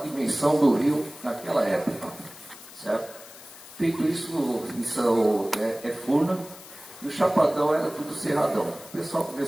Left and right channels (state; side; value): noise; left; hiss, 18 dB below the sound